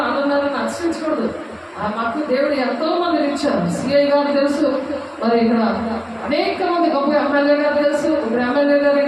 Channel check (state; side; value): identical; both; correlation 1.00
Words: అన్నున్నారు అని అతిశయించకూడదు. మాకు దేవుడు ఎంతో మందిని ఇచ్చారు. సిఐ గారు తెలుసు, మరి ఇక్కడ అనేక మంది గొప్ప ఎమ్మెల్యే గారు తెలుసు. ఇప్పుడు ఎమ్మెల్యే గారు